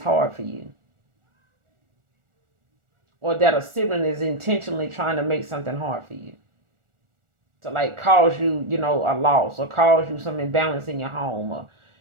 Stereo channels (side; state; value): left; late; 1.4 ms